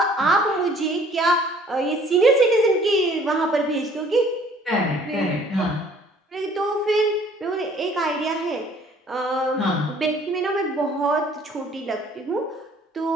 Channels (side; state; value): both; normal; correlation 0.56